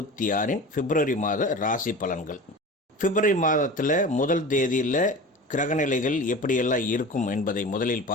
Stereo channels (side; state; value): both; normal; correlation 0.34